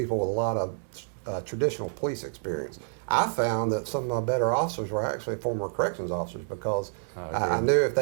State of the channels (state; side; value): silent; left; digital silence